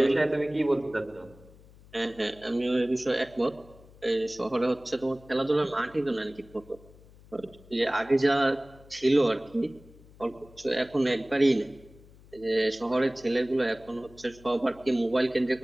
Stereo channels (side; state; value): left; noise; hum, 24 dB below the sound